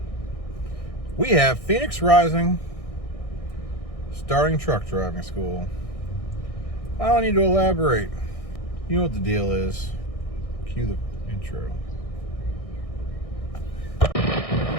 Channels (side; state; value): right; late; 1.6 ms